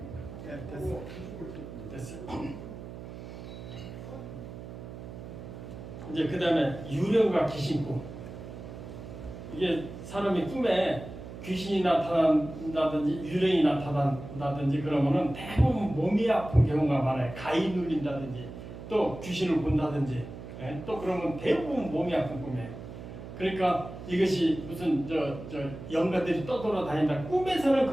네, 됐어요. 이제 그 다음에 유령과 귀신꿈. 이게 사람이 꿈에 귀신이 나타난다든지 유령이 나타난다든지 그러면은 대부분 몸이 아픈 경우가 많아요. 가위 눌린다든지 또 귀신을 본다든지 또 그러면 대부분 몸이 아픈 꿈이에요. 그러니까 이것이 무슨 저 영가들이 떠돌아다닌다. 꿈에서는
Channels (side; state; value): right; noise; hum, 12 dB below the sound